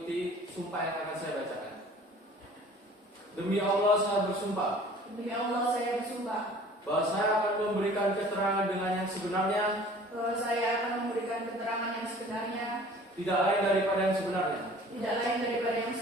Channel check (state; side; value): normal; both; correlation 0.48